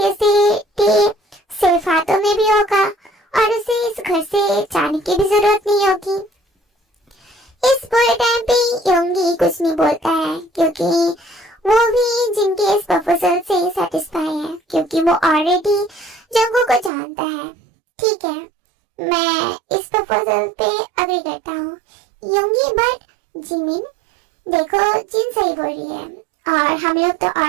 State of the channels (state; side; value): drops out; left; at 16.9 s